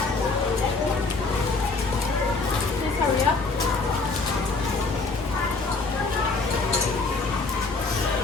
Please hurry up.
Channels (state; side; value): quieter; right; 3.9 dB